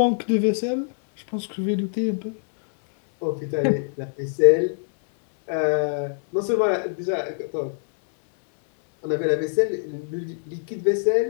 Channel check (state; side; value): silent; right; 63 dB below the other